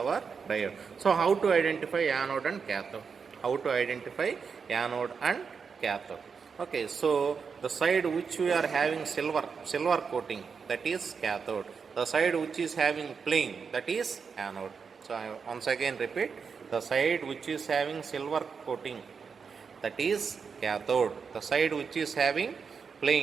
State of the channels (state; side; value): quieter; left; 5.8 dB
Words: diode. So how to identify anode and cathode? How to identify anode and cathode? Okay, so the side which we are having silver coating, that is cathode. The side which is having plain, that is anode. So I once again repeat, the side which is having silver coating, that is cathode. The side which is having